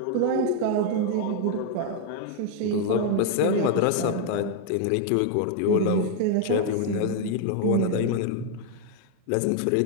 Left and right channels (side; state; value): both; different; correlation 0.00